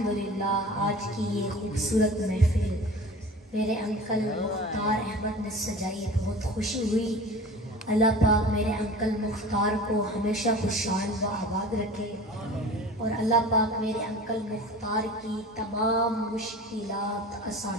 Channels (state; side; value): normal; both; correlation 0.39